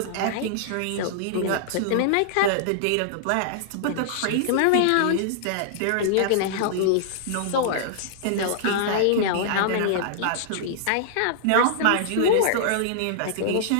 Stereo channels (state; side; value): different; both; correlation -0.01